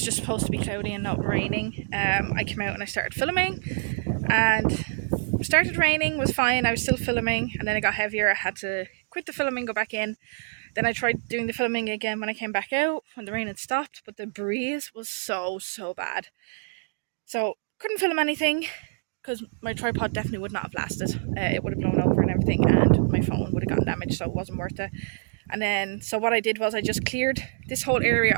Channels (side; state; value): left; silent; digital silence